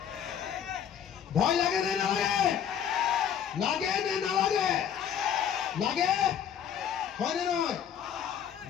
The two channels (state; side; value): quieter; right; 8.7 dB